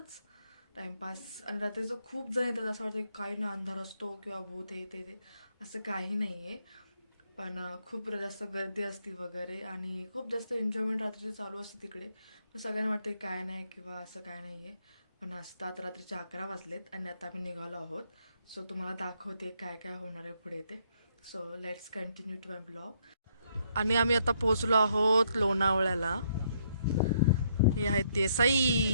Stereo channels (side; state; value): both; inverted; correlation -0.72